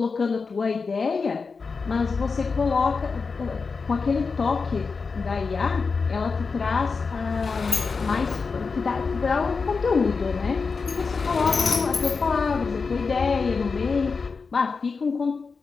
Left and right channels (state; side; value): quieter; right; 4.8 dB